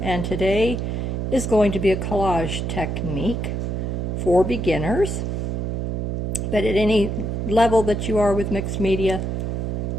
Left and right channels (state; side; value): noise; right; hum, 2 dB below the sound